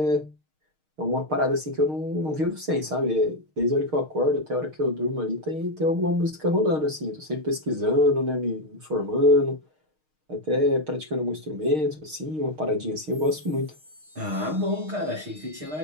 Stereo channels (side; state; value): left; late; 6.5 ms